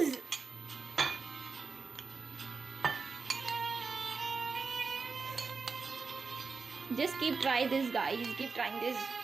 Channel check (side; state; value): left; quieter; 4.8 dB